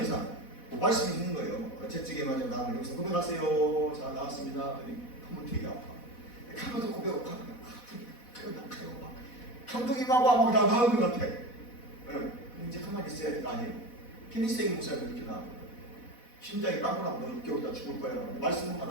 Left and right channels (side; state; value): right; late; 4.1 ms